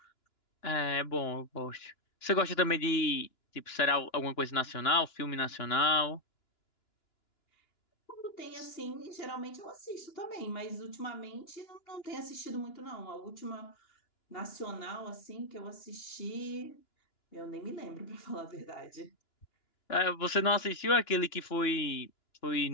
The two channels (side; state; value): right; late; 2.9 ms